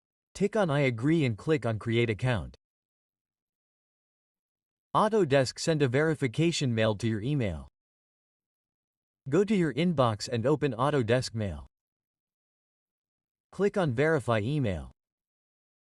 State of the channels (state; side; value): identical; both; correlation 1.00